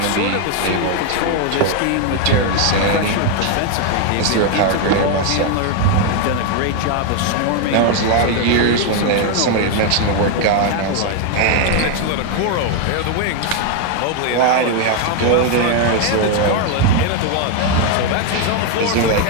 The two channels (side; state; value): both; different; correlation 0.01